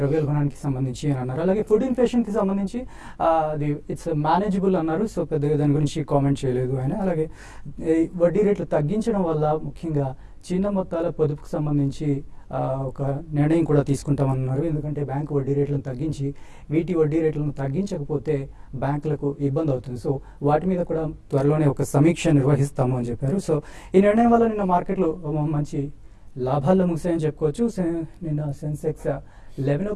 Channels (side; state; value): both; identical; correlation 1.00